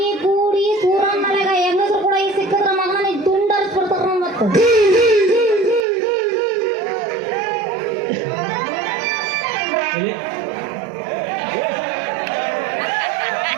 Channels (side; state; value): left; drops out; at 5.9 s